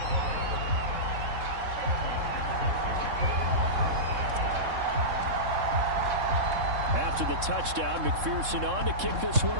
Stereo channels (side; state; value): left; late; 3.6 ms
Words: After the touchdown, McPherson on to kick this one